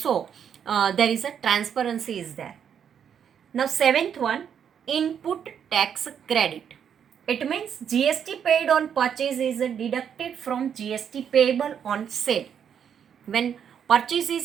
there is a transparency is there. Now seventh one, input tax credit. It means GST paid on purchase is deducted from GST payable on sale. When purchase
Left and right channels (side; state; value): left; quieter; 8.2 dB